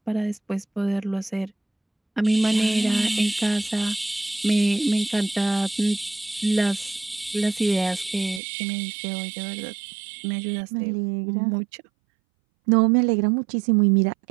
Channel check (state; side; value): drops out; left; at 8.4 s